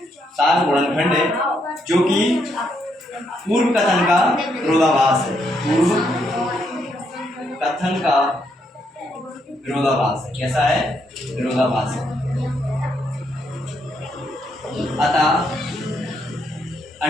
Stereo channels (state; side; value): normal; both; correlation 0.76